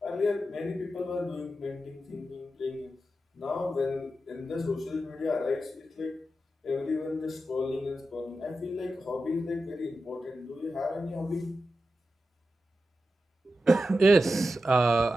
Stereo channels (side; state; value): both; normal; correlation 0.90